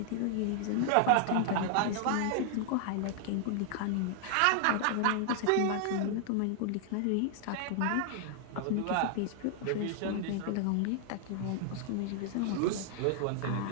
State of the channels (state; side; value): different; both; correlation 0.00